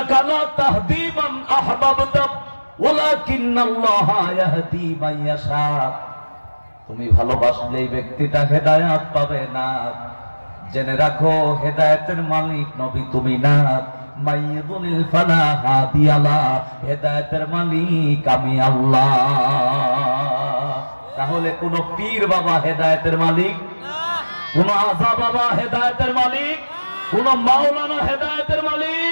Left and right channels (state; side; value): inverted; both; correlation -1.00